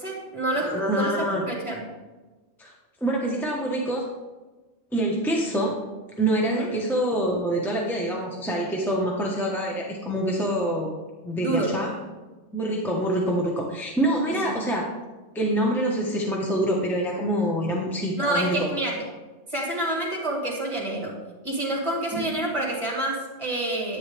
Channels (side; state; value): both; normal; correlation 0.22